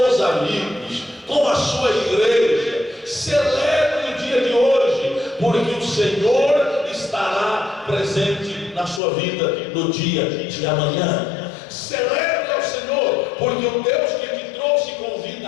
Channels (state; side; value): drops out; right; at 9.0 s